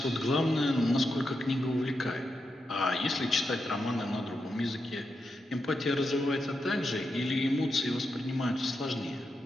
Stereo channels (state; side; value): normal; both; correlation 0.86